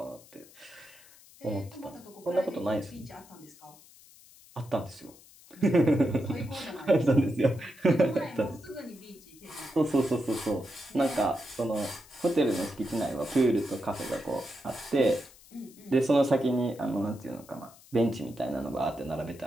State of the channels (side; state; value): left; noise; hiss, 23 dB below the sound